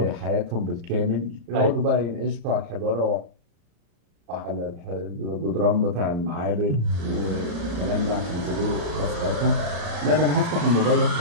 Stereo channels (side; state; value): left; late; 35 ms